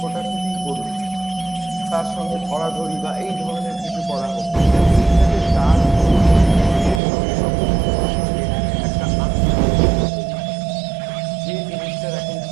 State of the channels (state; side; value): drops out; left; at 7.0 s